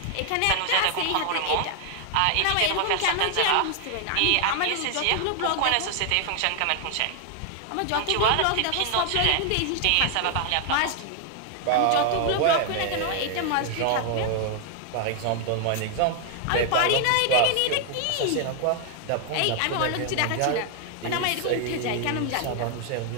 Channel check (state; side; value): different; both; correlation 0.00